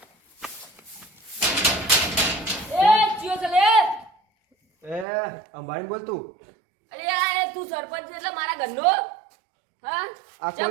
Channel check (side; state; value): left; drops out; at 5.1 s